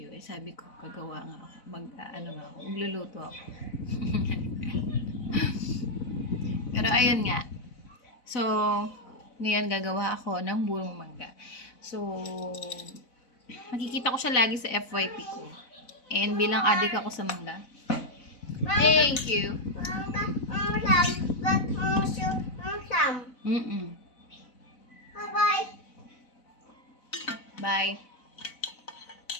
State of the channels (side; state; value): right; late; 4.0 ms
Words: Eh sabi ko, kagawa nga ako. Magluluto ako. Pero ayun nga. So, ngayon gagawa ako ng burong mangga. So, makikita ko siya lagi sa FYP ko. And bilang adik ako sa mangga. Thank you. Bye. Bye.